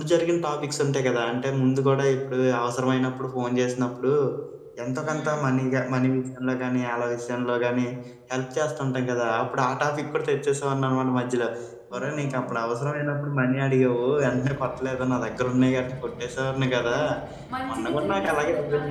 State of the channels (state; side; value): identical; both; correlation 1.00